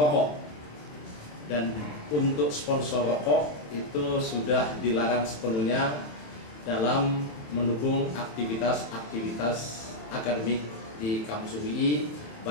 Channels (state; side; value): late; right; 26 ms